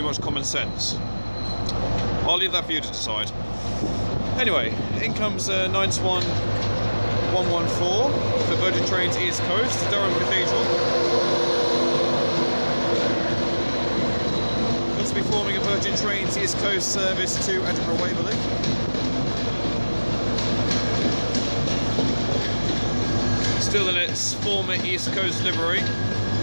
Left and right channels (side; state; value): both; inverted; correlation -1.00